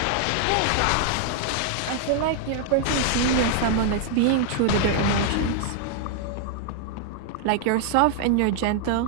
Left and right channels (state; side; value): different; both; correlation 0.00